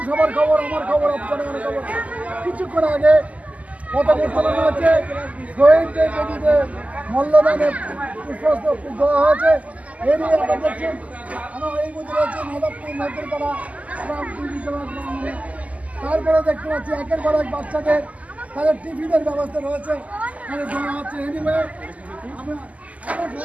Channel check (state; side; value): late; left; 0.072 ms